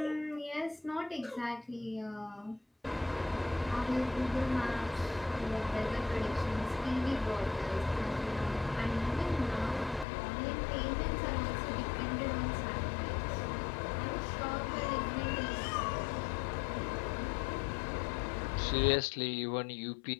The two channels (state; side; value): drops out; right; at 10.1 s